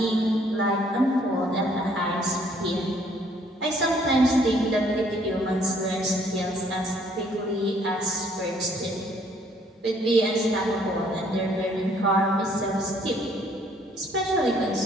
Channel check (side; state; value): both; normal; correlation 0.64